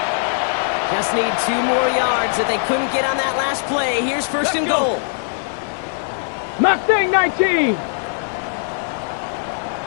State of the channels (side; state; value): right; silent; digital silence